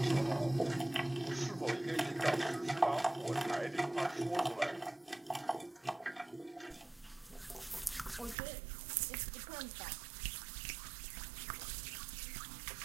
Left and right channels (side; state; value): left; drops out; at 8.3 s